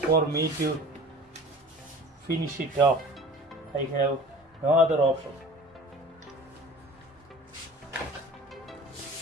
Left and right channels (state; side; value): normal; both; correlation 0.42